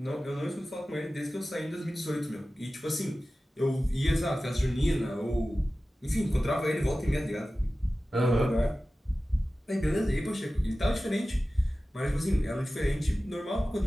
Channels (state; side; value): normal; both; correlation 0.96